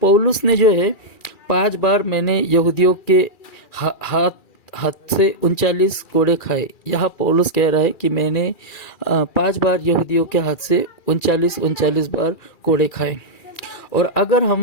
ने जो है 5 बार मैंने यहूदियों के हाथ से 39 कोड़े खाए। यहाँ पौलुस कह रहा है कि मैंने 5 बार यहूदियों के हाथ से 39 बार कोड़े खाए। और अगर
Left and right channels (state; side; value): late; right; 2.4 ms